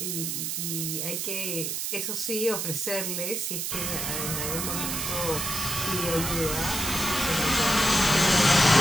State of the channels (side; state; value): right; noise; hiss, 2 dB below the sound